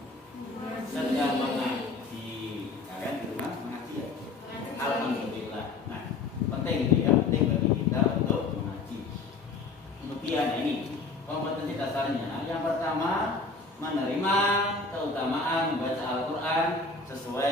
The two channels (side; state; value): right; quieter; 4.0 dB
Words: Sedang mengaji. Kalian di rumah mengaji ya? Alhamdulillah. Nah, penting itu ya, penting bagi kita untuk mengaji. Kemudian ini kompetensi dasarnya. Yang pertama, menerima keutamaan membaca Al-Quran